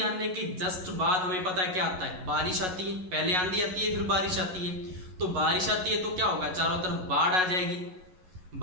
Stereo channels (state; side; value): late; left; 11 ms